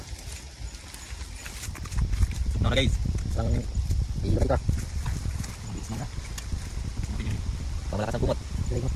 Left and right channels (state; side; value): identical; both; correlation 1.00